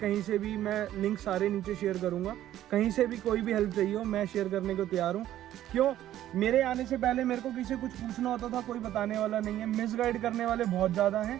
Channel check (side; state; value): left; quieter; 12.7 dB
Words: से भी, मैं लिंक सारे नीचे शेयर करूँगा, कहीं से भी कोई भी हेल्प चाहिए हो मैं शेयर करने को तैयार हूँ। क्यों? मेरे आने से पहले मेरे को किसी कुछ पूछना होता था, कोई बताने वाला नहीं है। मिसगाइड करने वाले बहुत ज़्यादा हैं,